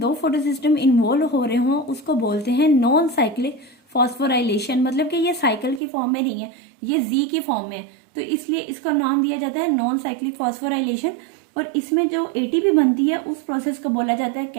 फोटो सिस्टम इन्वॉल्व हो रहे हों उसको बोलते हैं नॉन साइक्लिक फॉस्फोराइलेशन, मतलब कि ये साइकिल की फॉर्म में नहीं है, ये Z की फॉर्म में है, तो इसलिए इसका नाम दिया जाता है नॉन साइक्लिक फॉस्फोराइलेशन। और इसमें जो ATP बनती है उस प्रोसेस को बोला जाता है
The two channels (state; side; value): drops out; left; at 5.8 s